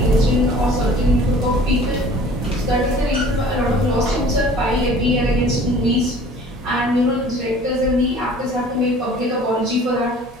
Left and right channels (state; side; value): normal; both; correlation 0.48